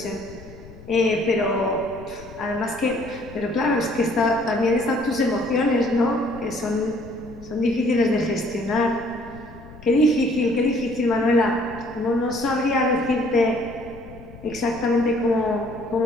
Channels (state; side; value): noise; left; rumble, 18 dB below the sound